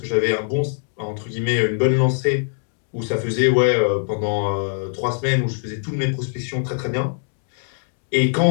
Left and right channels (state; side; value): silent; right; digital silence